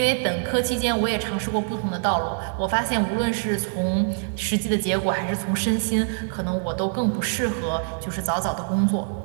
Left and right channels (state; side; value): silent; left; 62 dB below the other